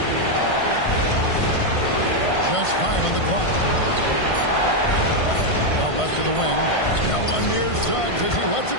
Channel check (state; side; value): late; right; 1.5 ms